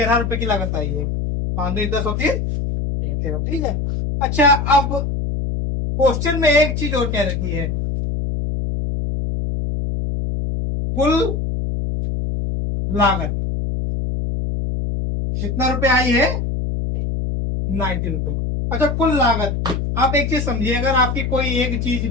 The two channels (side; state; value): left; noise; hum, 1 dB below the sound